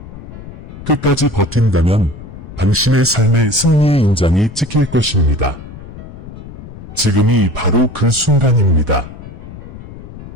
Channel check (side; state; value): left; noise; rumble, 14 dB below the sound